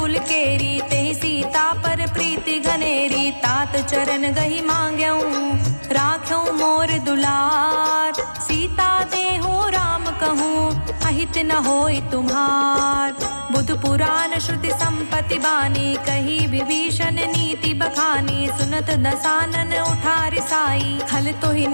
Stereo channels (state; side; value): inverted; both; correlation -1.00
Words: केरी, तेहि सीता पर प्रीति घनेरी। तात चरण गही मांग्यऊं, राख्यऊं मोर दुलार। सीता देहु राम कहूँ, अहित न होई तुम्हार। बुध पुराण श्रुति संपत्ति बानी, कही विभीषण नीति बखानी। सुनत दसानन उठारि साई, खल तो ही